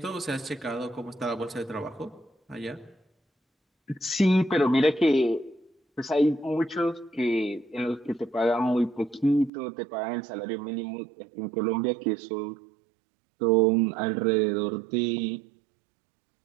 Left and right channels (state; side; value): drops out; left; at 9.5 s